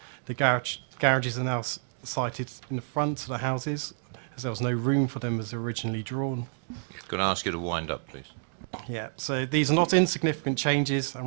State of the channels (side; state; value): left; silent; digital silence